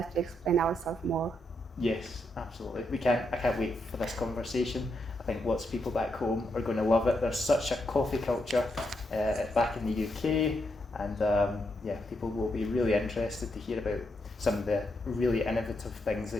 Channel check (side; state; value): both; normal; correlation 0.81